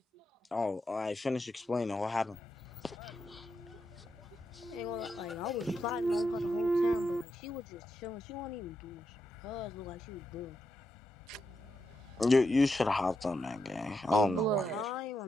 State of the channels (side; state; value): both; normal; correlation 0.84